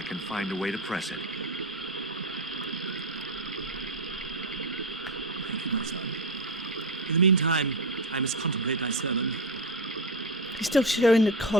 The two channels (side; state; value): both; normal; correlation 0.16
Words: can find a way to press it. Thank you, my son. In the meantime, I must contemplate my sermon. He's still showing the